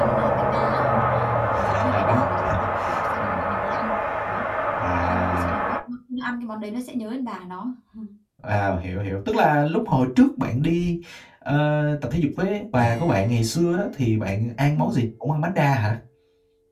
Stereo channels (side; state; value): both; identical; correlation 1.00